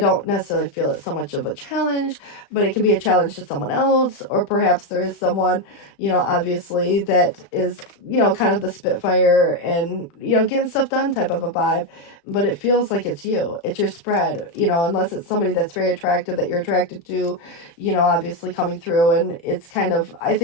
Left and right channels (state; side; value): late; right; 35 ms